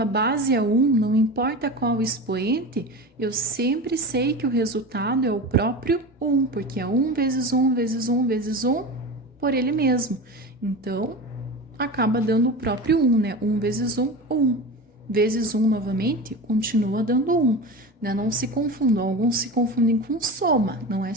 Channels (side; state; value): both; normal; correlation 0.28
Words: base é 1, não importa qual expoente, eu sempre sei que o resultado é o próprio 1, porque é 1 vezes 1 vezes 1 vezes 1 por ele mesmo. Então, acaba dando o próprio 1, né? 1 vezes 1, 1. Vezes 1 novamente, continua dando 1. Né? Não se confundam, alguns se confundem com soma. Não é